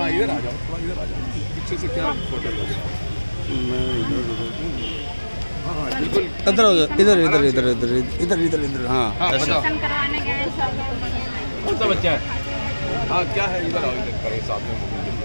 इधर आ जाओ, थोड़ा इधर आ जाओ, पीछे से क्या फोटो लोगे? हाँ बिल्कुल इधर हो जाओ, इधर इधर इधर इधर इधर इधर इधर। हाँ एडमिशन करवाने गए सर। कौन सा बच्चा है? हाँ क्या है, इधर आओ, इधर करें साथ में।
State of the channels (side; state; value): both; inverted; correlation -1.00